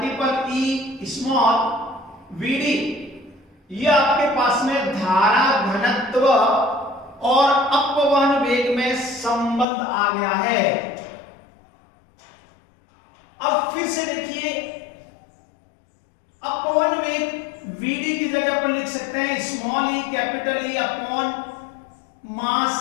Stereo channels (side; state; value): right; drops out; at 9.7 s